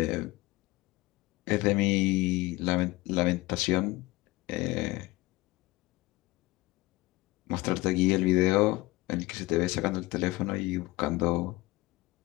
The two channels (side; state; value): right; quieter; 20.9 dB